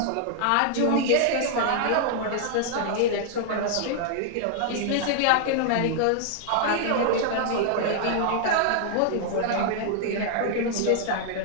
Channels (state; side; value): different; both; correlation -0.01